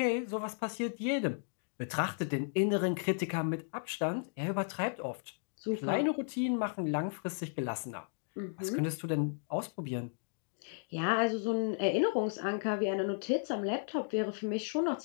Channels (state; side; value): silent; right; digital silence